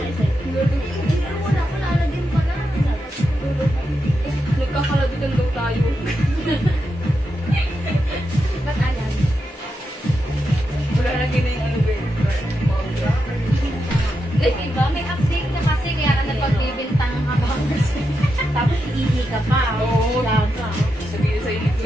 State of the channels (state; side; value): normal; both; correlation 0.86